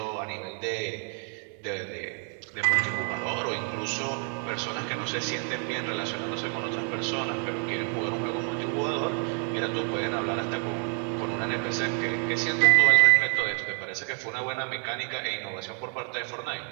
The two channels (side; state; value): left; quieter; 39.0 dB